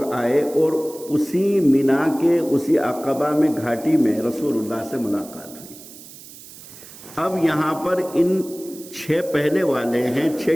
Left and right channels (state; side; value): noise; right; hiss, 18 dB below the sound